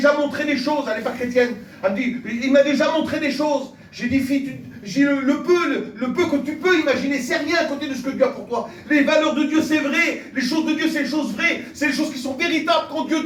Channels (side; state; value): both; identical; correlation 1.00